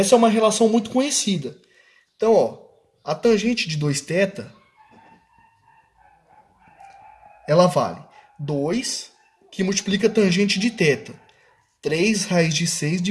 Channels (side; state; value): both; identical; correlation 1.00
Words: é uma relação muito conhecida. Então, ó, a tangente de 2θ, ela vale 2, que multiplica a tangente de θ. 3 raiz de 6